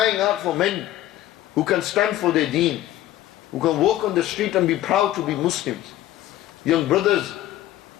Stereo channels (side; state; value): right; quieter; 13.9 dB